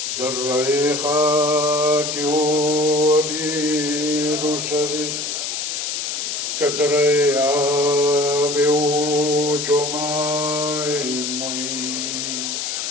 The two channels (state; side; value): noise; left; hiss, 3 dB below the sound